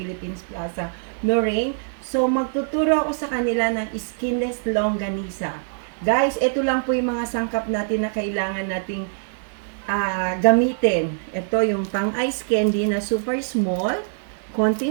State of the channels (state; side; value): silent; left; digital silence